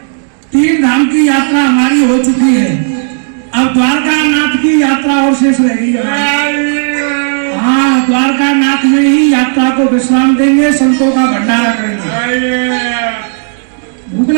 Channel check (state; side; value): silent; left; 73 dB below the other